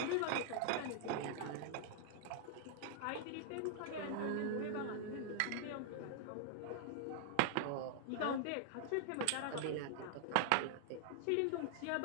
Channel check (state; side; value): different; both; correlation -0.01